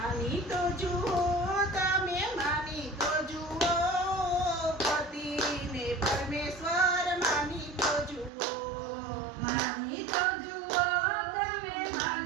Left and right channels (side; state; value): left; drops out; at 8.3 s